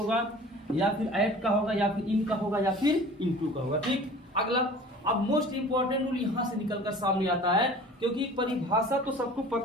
या फिर एट का होगा, या फिर इन का होगा, या फिर इनटू का होगा। ठीक, अगला अब मोस्ट इंपॉर्टेंट रूल यहाँ से निकलकर सामने आता है, क्योंकि परिभाषा तो सबको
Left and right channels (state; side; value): normal; both; correlation 0.44